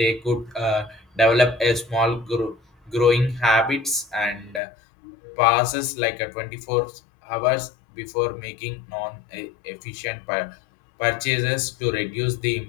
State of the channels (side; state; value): right; drops out; at 4.6 s